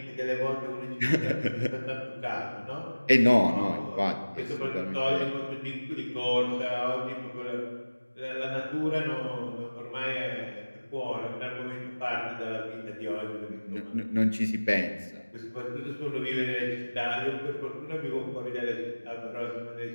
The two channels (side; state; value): both; inverted; correlation -1.00